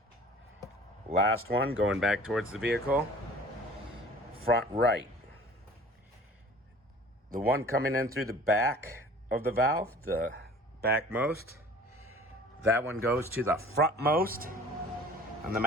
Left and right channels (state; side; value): normal; both; correlation 0.47